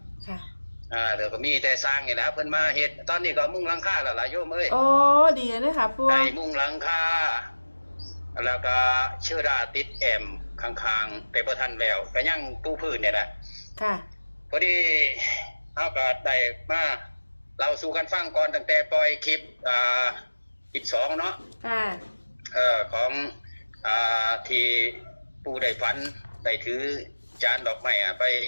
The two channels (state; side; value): inverted; both; correlation -1.00